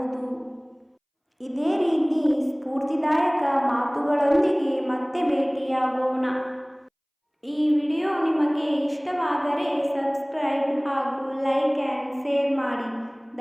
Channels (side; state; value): both; identical; correlation 1.00